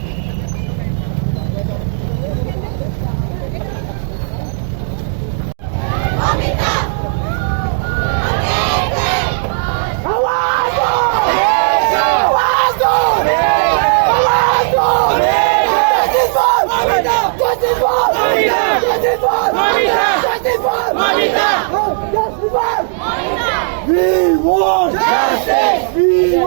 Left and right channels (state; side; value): silent; left; digital silence